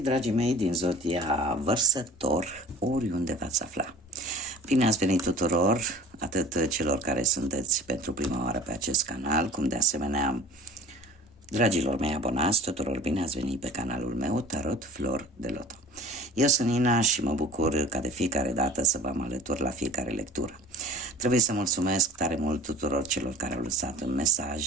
dragii mei, din zodia Vărsător, oriunde v-ați afla. Bine ați venit tuturor, atât celor care sunteți pentru prima oară pe acest canal, cum de asemenea dragilor mei abonați, tuturor bine ați venit pe canalul meu, Tarot Flor de Loto. Eu sunt Nina și mă bucur ca de fiecare dată să vă alătur la fiecare lectură. Trebuie să mulțumesc tare mult tuturor celor care au lăsat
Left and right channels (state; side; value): normal; both; correlation 0.42